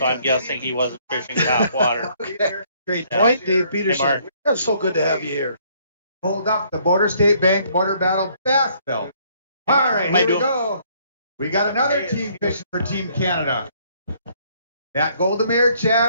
I'm guessing he wasn't fishing topwater. Okay. Great point, Dave Peterson. Hey, That's so good to have you here. Hold up the Border State Bank Border Battle Bass Belt. All right, here we go. We got another team fishing for Team Canada. Matt Goldemir,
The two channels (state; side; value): inverted; both; correlation -0.65